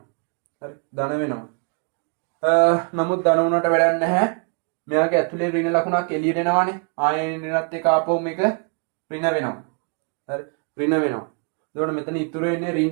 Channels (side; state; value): left; quieter; 37.6 dB